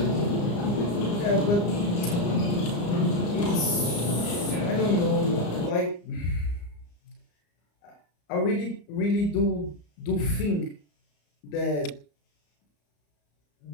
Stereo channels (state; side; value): late; right; 34 ms